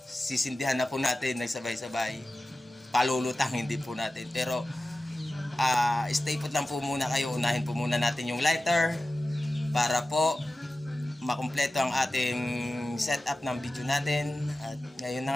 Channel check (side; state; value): both; normal; correlation 0.95